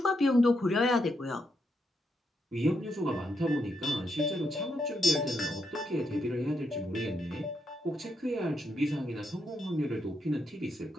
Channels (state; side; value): normal; both; correlation 0.80